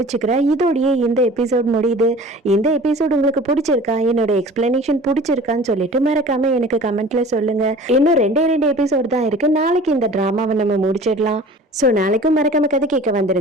இதோடயே இந்த எபிசோட் முடியுது. இந்த எபிசோட் உங்களுக்கு பிடிச்சிருக்கா, என்னோட எக்ஸ்பிளனேஷன் பிடிச்சிருக்கான்னு சொல்லிட்டு மறக்காம எனக்கு கமெண்ட்ல சொல்லுங்க. இன்னும் ரெண்டு எபிசோட் தான் இருக்கு. நாளைக்கு இந்த டிராமாவை நம்ம முடிச்சிடலாம். ஸோ நாளைக்கும் மறக்காம கதை கேட்க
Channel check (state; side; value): normal; both; correlation 0.44